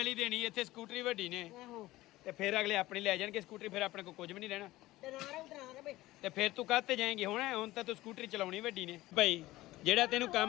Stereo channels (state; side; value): quieter; right; 17.5 dB